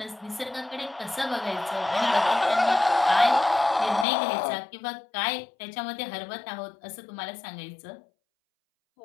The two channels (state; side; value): drops out; right; at 4.0 s